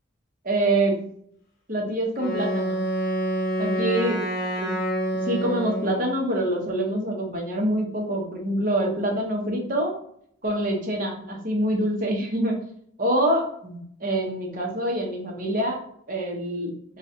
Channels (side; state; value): both; normal; correlation 0.30